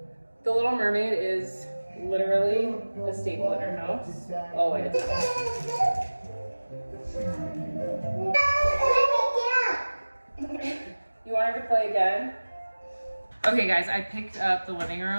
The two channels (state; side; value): inverted; both; correlation -1.00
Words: The Little Mermaid is literally a staple in our house. Always. You want her to play again? Okay guys, I picked up the living